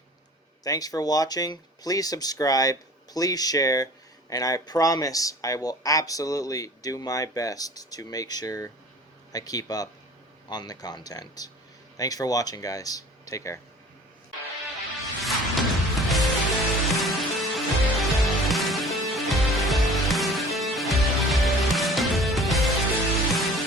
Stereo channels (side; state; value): both; normal; correlation 0.45